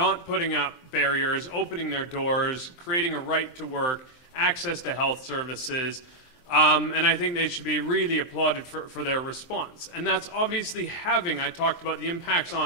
putting up barriers, opening their doors, creating a right to work, access to health services, and I think they should be really applauded for their response. And that's obviously having, I talked about the impacts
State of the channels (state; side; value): late; right; 23 ms